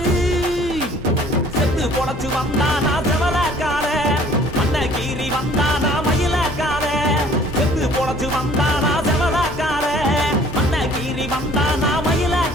செத்து பொழைச்சு வந்தானா செவலக்கார மண்ண கீறி வந்தானா மயிலக்கார செத்து பொழைச்சு வந்தானா செவலக்கார மண்ண கீறி வந்தானா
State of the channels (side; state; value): both; normal; correlation 0.54